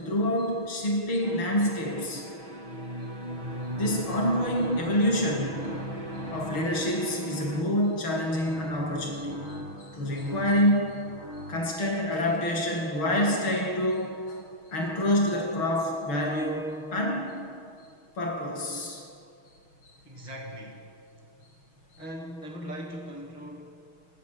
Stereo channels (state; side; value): late; right; 6.3 ms